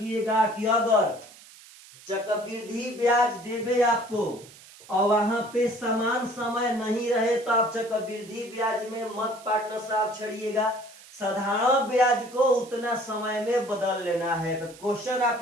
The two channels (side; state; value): right; noise; hiss, 21 dB below the sound